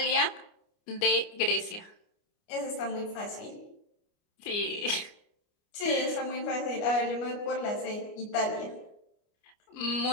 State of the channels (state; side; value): late; right; 29 ms